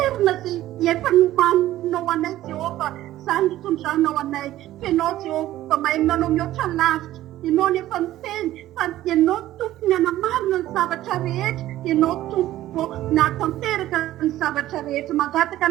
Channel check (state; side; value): quieter; left; 14.4 dB